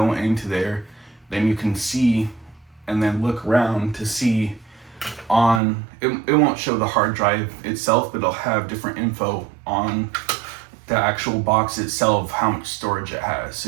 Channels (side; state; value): left; drops out; at 5.6 s